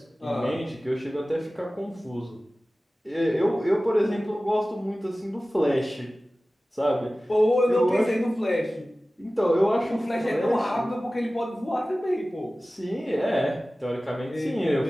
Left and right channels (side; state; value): both; normal; correlation 0.97